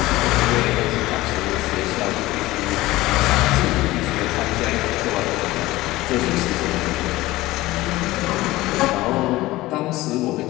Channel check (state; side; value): quieter; right; 18.2 dB